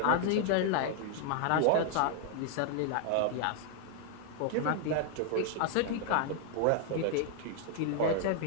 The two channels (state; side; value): different; both; correlation 0.00